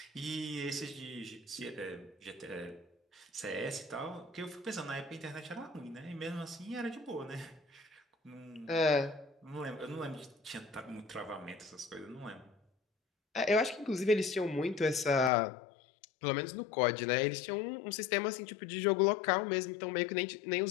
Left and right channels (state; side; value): drops out; right; at 15.3 s